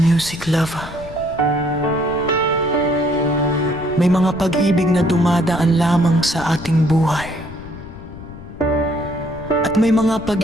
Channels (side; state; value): left; noise; rumble, 15 dB below the sound